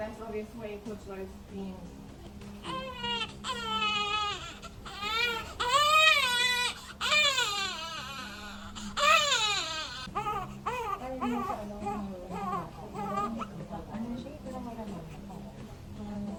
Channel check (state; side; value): identical; both; correlation 1.00